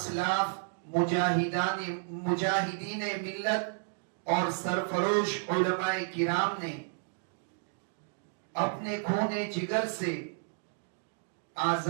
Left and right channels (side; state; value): left; silent; digital silence